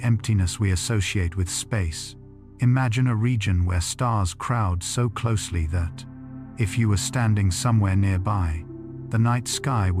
emptiness we associate with space, imagine a region where stars crowd so closely that, if you were standing somewhere nearby, the night sky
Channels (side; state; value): both; identical; correlation 1.00